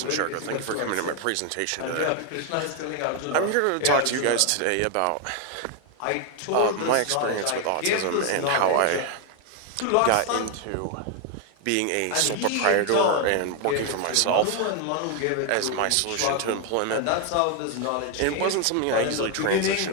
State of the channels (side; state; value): both; different; correlation 0.01